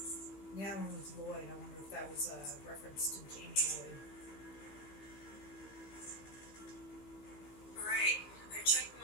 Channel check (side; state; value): right; late; 15 ms